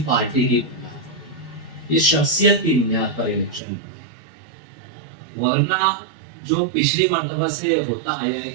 پارٹی کی بنیاد پر. یہ شخصیت کی بنیاد پر الیکشن ہوا. ورنہ جو پچھلی مرتبہ سے یہ ہوتا آیا ہے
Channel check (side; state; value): left; drops out; at 3.6 s